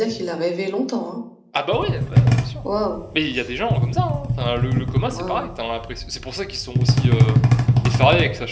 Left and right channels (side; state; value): both; identical; correlation 1.00